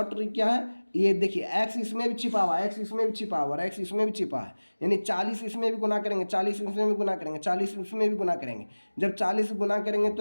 ट्रिक क्या है, ये देखिए x इसमें भी छिपा हुआ है, x इसमें भी छिपा हुआ है, x इसमें भी छिपा है, यानी 40 इसमें भी गुना करेंगे, 40 इसमें भी गुना करेंगे, 40 इसमें भी गुना करेंगे। जब 40 गुना करेंगे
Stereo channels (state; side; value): inverted; both; correlation -1.00